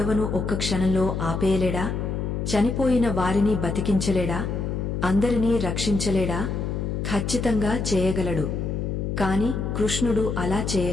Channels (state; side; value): noise; left; hum, 2 dB below the sound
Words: ఒక్క క్షణంలో ఆపేయలేడా? చనిపోయిన వారిని బతికించలేడా? అందరినీ రక్షించలేడా? ఖచ్చితంగా చేయగలడు. కాని కృష్ణుడు అలా